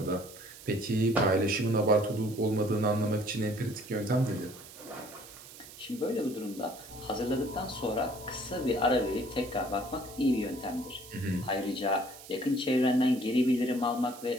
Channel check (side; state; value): right; noise; hiss, 17 dB below the sound